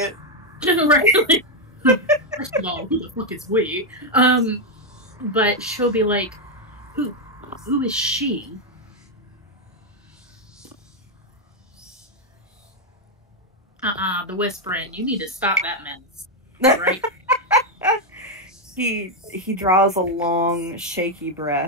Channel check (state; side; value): normal; both; correlation 0.02